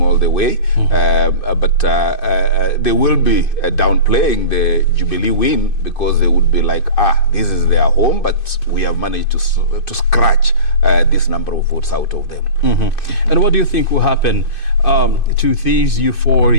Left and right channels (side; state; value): right; late; 2.5 ms